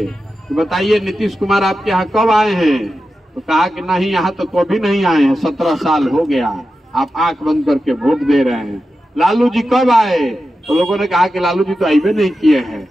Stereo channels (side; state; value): both; normal; correlation 0.91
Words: कि बताइए नीतीश कुमार आपके यहाँ कब आए हैं, तो कहा कि नहीं यहाँ तो कभी नहीं आए हैं, 17 साल हो गया, आप आंख बंद करके वोट दे रहे हैं। लालू जी कब आए, तो लोगों ने कहा कि लालू जी तो आइबे नहीं किए हैं,